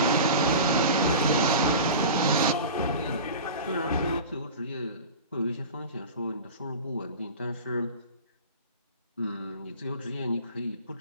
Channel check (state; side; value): inverted; both; correlation -0.34